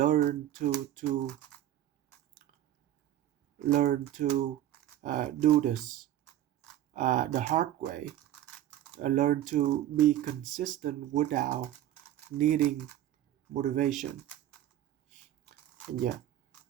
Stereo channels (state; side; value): quieter; left; 12.6 dB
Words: to do this the hard way, learn to be consistent without needing motivation. And yeah,